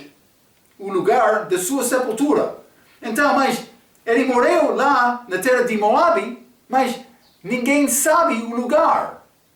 o lugar da sua sepultura. Então, mas ele morreu lá na terra de Moabe, mas ninguém sabe o lugar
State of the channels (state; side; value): identical; both; correlation 1.00